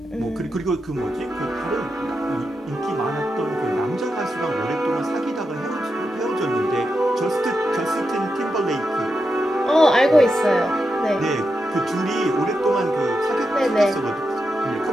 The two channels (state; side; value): normal; both; correlation 0.87